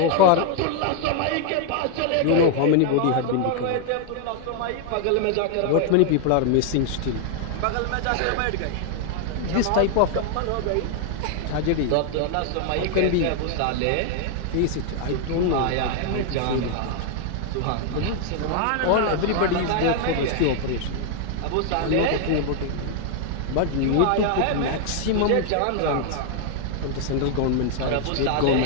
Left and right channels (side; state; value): both; different; correlation 0.00